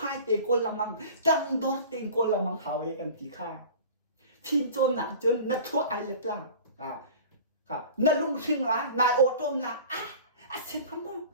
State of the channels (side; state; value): both; inverted; correlation -0.41